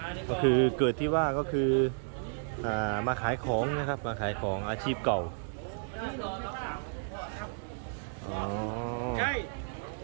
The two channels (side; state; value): left; silent; digital silence